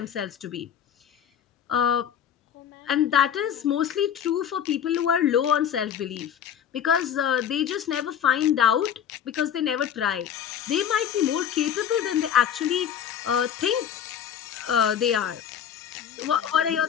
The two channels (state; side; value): quieter; right; 9.1 dB